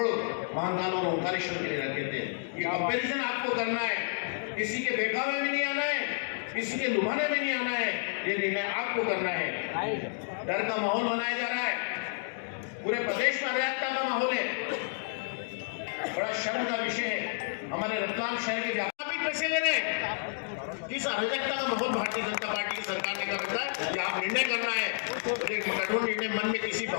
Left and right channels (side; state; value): right; silent; digital silence